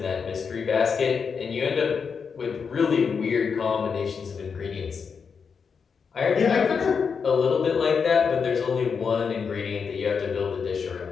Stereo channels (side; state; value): right; quieter; 6.0 dB